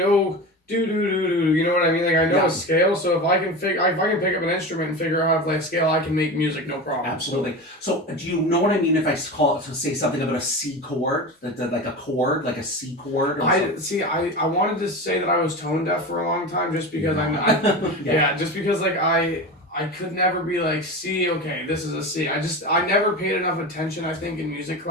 do do do do. You know what I mean? Like I know Yeah. a scale, so if I can pick up an instrument and figure out how to play a scale, I can make music no problem. Absolutely. So do you know what I mean if I call it to say something about a C chord, like a chord, like a C chord? Or something? I wanted to say that I was tone deaf for a long time just because Yeah. just because like I could never be like C, okay, this is a C. I never paid enough attention, I think, in music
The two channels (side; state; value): both; normal; correlation 0.27